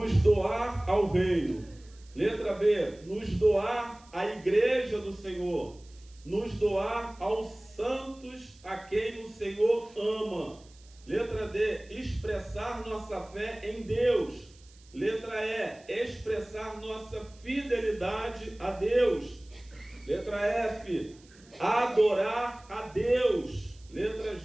doar ao reino. Letra B, nos doar à igreja do Senhor, nos doar aos santos a quem o Senhor ama. Letra D, expressar nossa fé em Deus. Letra E, expressar nossa fidelidade a Deus. Letra F, adorar a Deus. Letra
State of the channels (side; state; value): right; noise; hiss, 27 dB below the sound